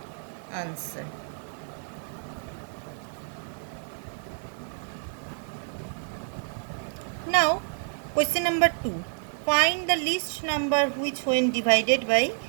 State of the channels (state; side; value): silent; left; 59 dB below the other